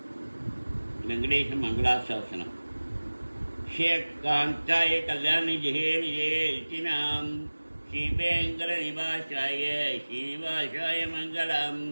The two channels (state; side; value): inverted; both; correlation -1.00